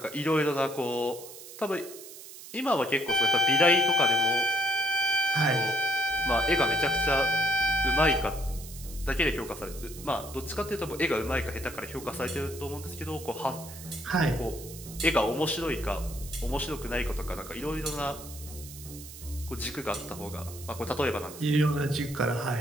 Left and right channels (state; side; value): noise; right; hiss, 15 dB below the sound